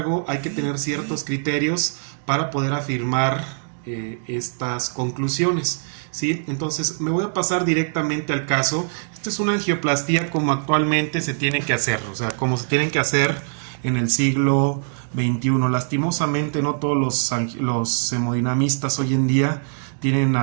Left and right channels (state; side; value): silent; left; digital silence